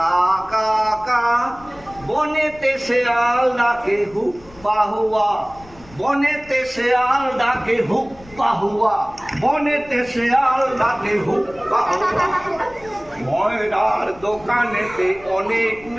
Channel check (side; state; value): left; noise; rumble, 23 dB below the sound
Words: কা কা, বনেতে শেয়াল ডাকে হুপ্পা হুয়া, বনেতে শেয়াল ডাকে হুপ্পা হুয়া, বনেতে শেয়াল ডাকে হুপ্পা হুয়া। ময়রার দোকানেতে অনেক